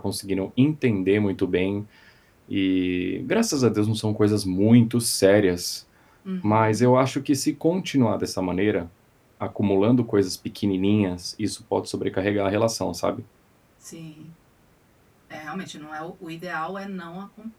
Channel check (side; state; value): both; identical; correlation 1.00